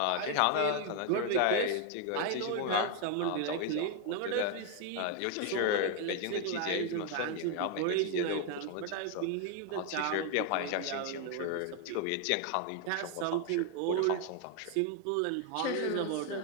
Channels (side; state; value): both; different; correlation 0.00